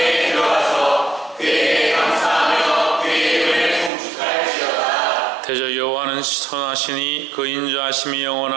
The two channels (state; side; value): drops out; left; at 3.9 s